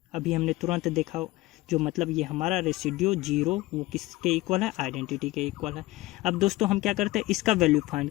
अभी हमने तुरंत देखा, जो मतलब ये हमारा रेसिड्यू 0 वो किसके इक्वल है, आइडेंटिटी के इक्वल है। अब दोस्तों हम क्या करते हैं, इसका वैल्यू फाइंड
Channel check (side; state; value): right; quieter; 18.9 dB